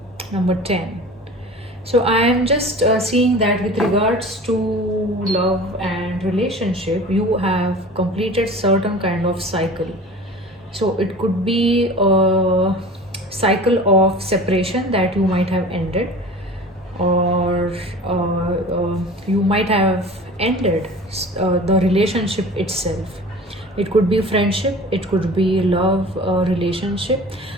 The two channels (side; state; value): both; normal; correlation 0.39